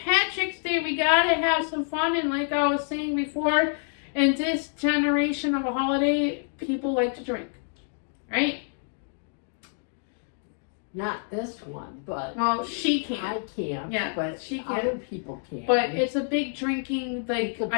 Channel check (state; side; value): silent; right; 60 dB below the other